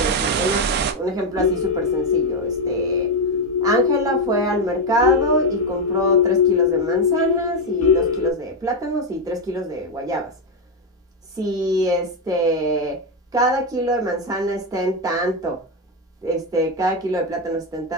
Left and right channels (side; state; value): both; normal; correlation 0.06